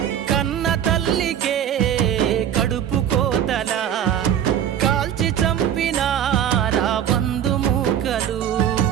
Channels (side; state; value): left; quieter; 9.9 dB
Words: కన్న తల్లికే కడుపు కోతలా కాల్చి చంపినారా బంధుమూకలు